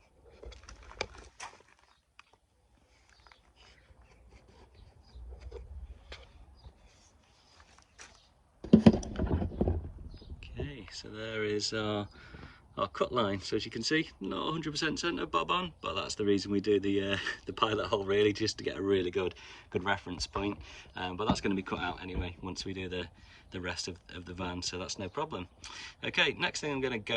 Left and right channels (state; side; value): identical; both; correlation 1.00